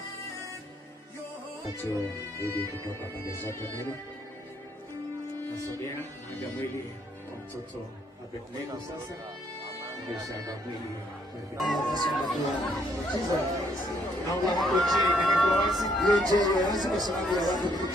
Achio ili kutoka pande zote mbili. Nasogea haja mwili kwa mtoto Abednego sasa. Mshamba mwili. Naomba hapo chini ndio wazi. Yeye wazi kwa sababu ya watu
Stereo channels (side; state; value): both; normal; correlation 0.69